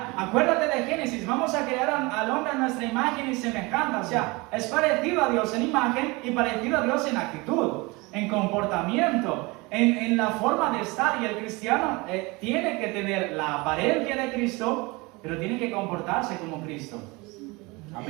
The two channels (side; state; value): left; quieter; 25.1 dB